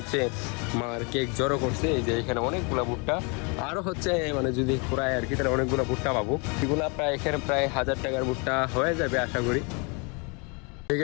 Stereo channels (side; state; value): right; quieter; 32.6 dB